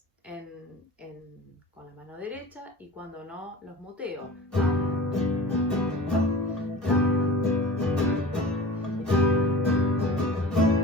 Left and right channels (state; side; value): normal; both; correlation 0.37